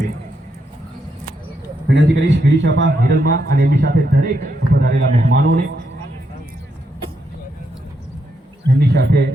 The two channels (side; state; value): both; normal; correlation 0.80